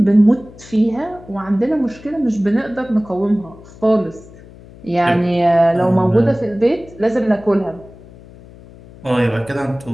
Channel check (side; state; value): left; noise; hum, 21 dB below the sound